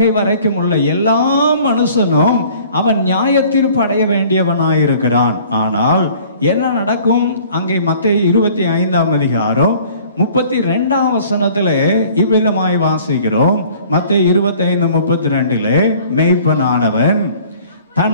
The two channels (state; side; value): inverted; both; correlation -0.52